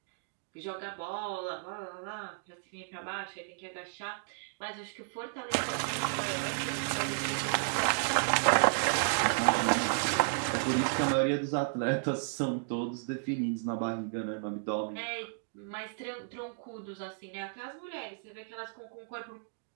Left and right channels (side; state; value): left; silent; digital silence